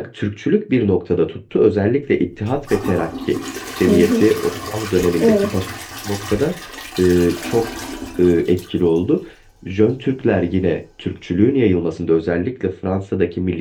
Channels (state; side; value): identical; both; correlation 1.00